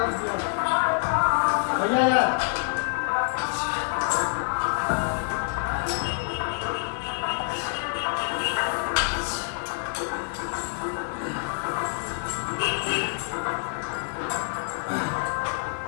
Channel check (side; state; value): right; silent; digital silence